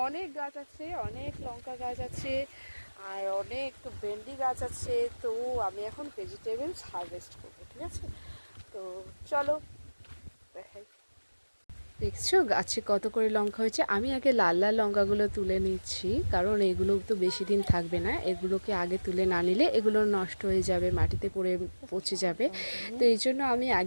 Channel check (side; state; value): both; inverted; correlation -1.00